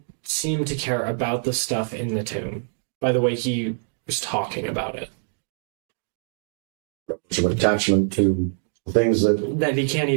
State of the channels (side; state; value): left; silent; digital silence